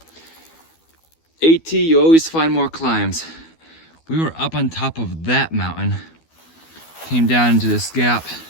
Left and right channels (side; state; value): right; late; 12 ms